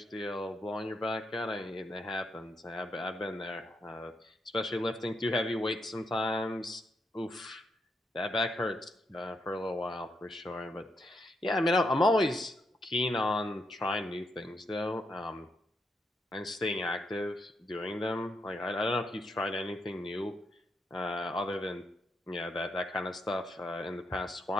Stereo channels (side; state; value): both; normal; correlation 0.79